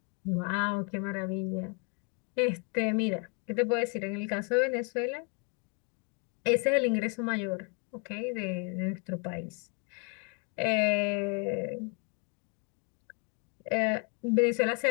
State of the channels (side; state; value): right; quieter; 34.6 dB